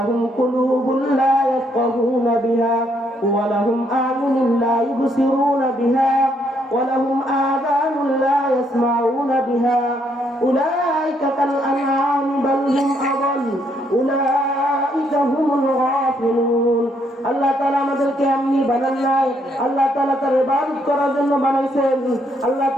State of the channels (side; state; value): both; normal; correlation 0.72